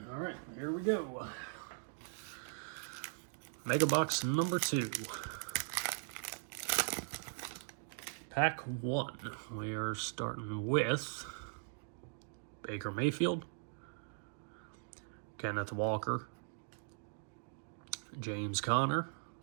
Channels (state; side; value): silent; left; digital silence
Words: All right, here we go. Mega box number 2. Pack 1. We are starting with Baker Mayfield, Kenneth Walker, James Conner,